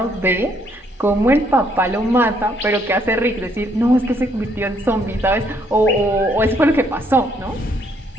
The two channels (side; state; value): both; normal; correlation 0.69